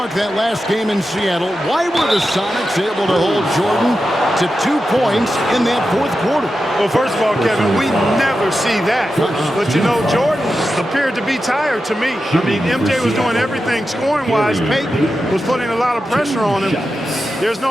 that last game in Seattle, why were the Sonics able to hold Jordan to 2 points in that fourth quarter. Well, first of all, Kevin, we never see that. But, you know, Jordan appeared to be tired to me. I mean, MJ was doing everything scoring-wise. Peyton was putting a lot of pressure on him. There's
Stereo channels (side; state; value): both; normal; correlation 0.90